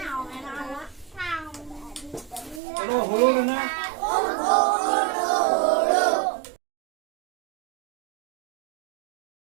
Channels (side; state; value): left; drops out; at 2.6 s